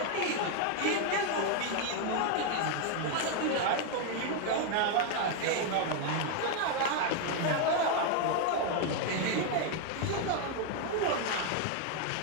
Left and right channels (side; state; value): both; different; correlation 0.01